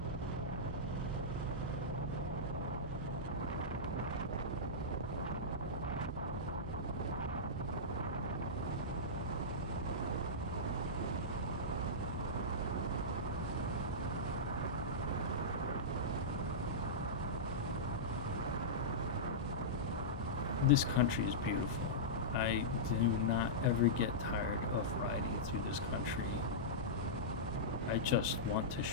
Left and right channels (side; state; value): both; normal; correlation -0.14